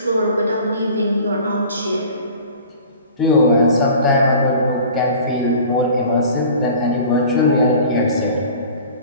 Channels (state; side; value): inverted; both; correlation -0.43